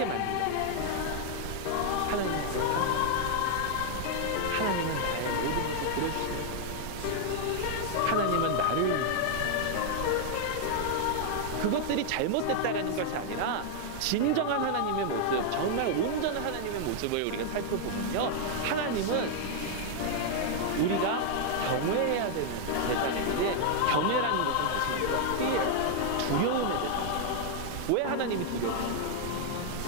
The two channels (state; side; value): different; both; correlation 0.00